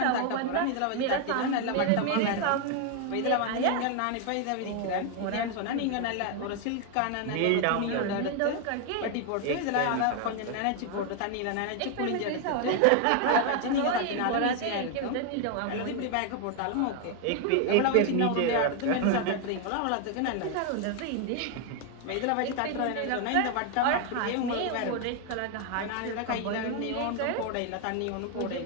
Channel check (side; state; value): both; different; correlation 0.01